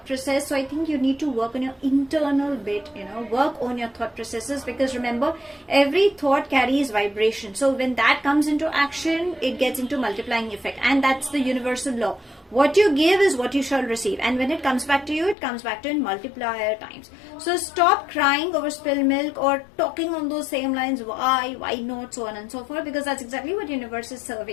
process. So I think you need to work on your internal bit, work on your thought processes, because remember, every thought carries vibration. So when that comes into action, it gets into multiplying effect, and that's the universal law. What you give is what you shall receive, and when it comes back to you, it comes back to in multiplier times. So stop crying over spilled milk or talking on those same lines, why not, so on and so forth, because that's exactly what universe is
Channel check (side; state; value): right; drops out; at 15.4 s